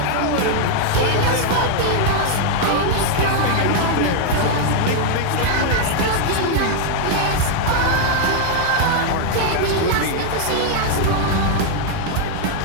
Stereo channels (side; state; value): both; different; correlation 0.00